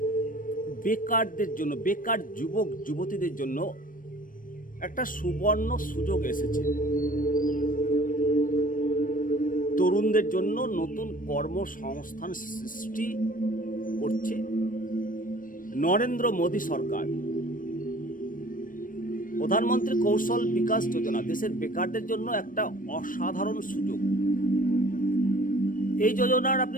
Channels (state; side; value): late; right; 0.40 ms